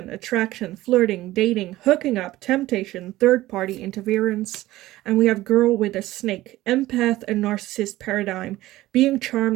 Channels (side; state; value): left; quieter; 16.5 dB